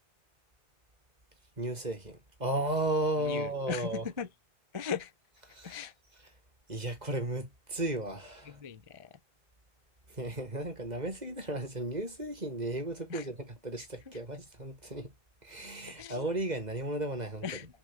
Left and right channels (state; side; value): late; left; 2.0 ms